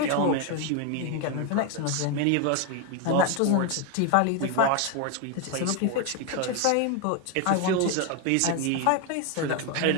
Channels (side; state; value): both; different; correlation 0.01